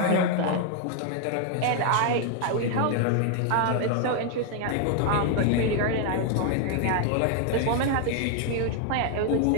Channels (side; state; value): both; different; correlation 0.00